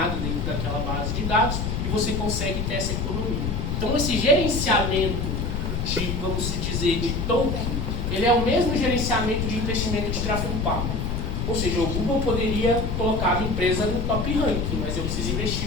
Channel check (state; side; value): noise; left; rumble, 1 dB below the sound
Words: dentro daquela base de dados e você consegue ter essa economia. Então esse gerenciamento de, vamos dizer, de token, ele é o mesmo gerenciamento de investimento de tráfego pago. Ou seja, o Google poderia colocar a minha empresa no top ranking, mas eu preciso